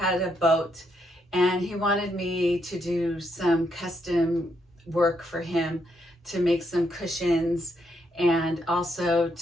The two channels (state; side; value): normal; both; correlation 0.77